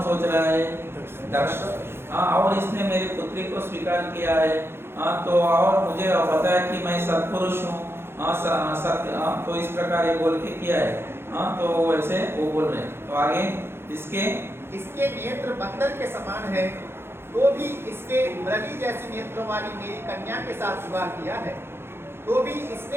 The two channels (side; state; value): left; late; 0.11 ms